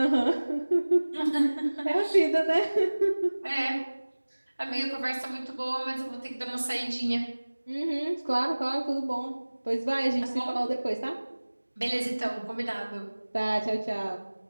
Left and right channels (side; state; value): both; inverted; correlation -1.00